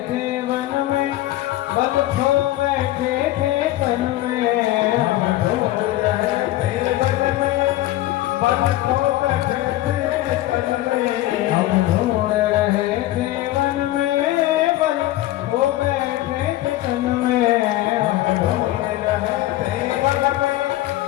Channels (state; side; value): quieter; right; 15.8 dB